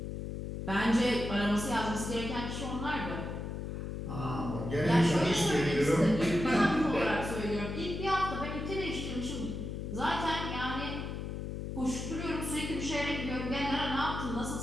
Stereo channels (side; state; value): left; noise; hum, 5 dB below the sound